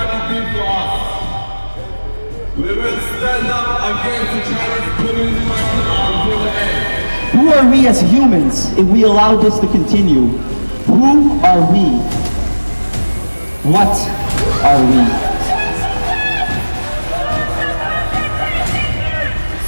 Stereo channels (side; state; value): both; inverted; correlation -1.00